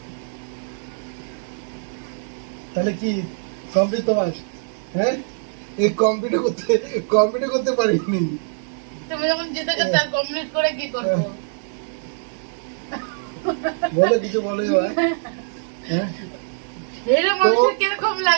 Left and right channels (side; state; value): left; silent; digital silence